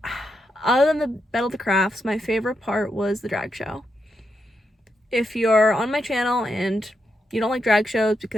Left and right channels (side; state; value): both; normal; correlation 0.83